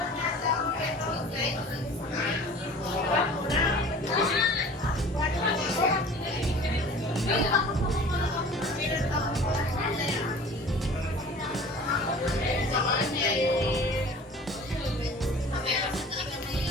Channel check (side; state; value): both; normal; correlation 0.44